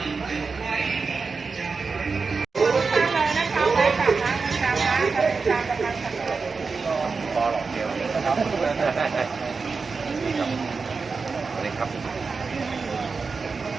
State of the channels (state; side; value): quieter; left; 4.7 dB